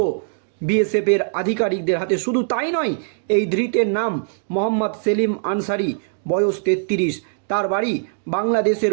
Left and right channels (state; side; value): silent; left; digital silence